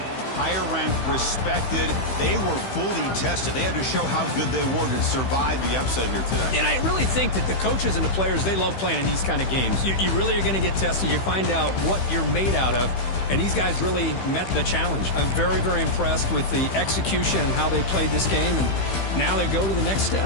higher ranked, respected. They were fully tested. They had to show how good they were to survive the upset here today. And I really think that the coaches and the players, they love playing in these kind of games. You really are going to get tested. You find out what you're made out of. And these guys really met the challenge. I'm very, very impressed with the execution and how they played this game. And now they go to the next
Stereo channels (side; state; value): right; late; 15 ms